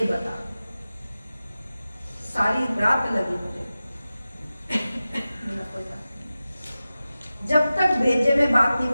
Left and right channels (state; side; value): inverted; both; correlation -0.95